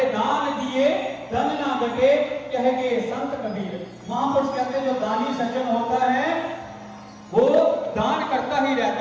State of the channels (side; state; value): both; identical; correlation 1.00